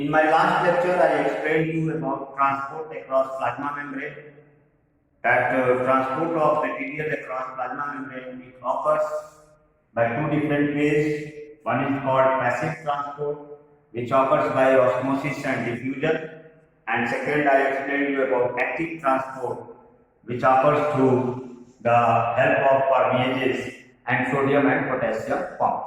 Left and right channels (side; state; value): both; identical; correlation 1.00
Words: my last lecture, I explained you about transport across plasma membrane. That transport of material across plasma membrane it occurs by two different ways. One is called passive transport, which occurs by osmosis and diffusion. And second, I explained you about active transport, which occurs through the help of permeases and sodium and potassium